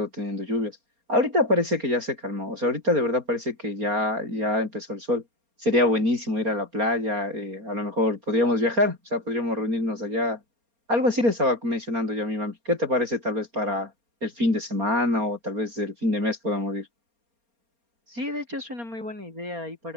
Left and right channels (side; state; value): left; late; 4.3 ms